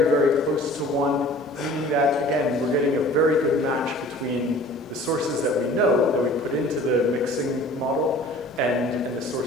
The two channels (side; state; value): both; normal; correlation 0.47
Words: very close to 1, meaning that, again, we're getting a very good match between the sources that we know that we put into the mixing model and the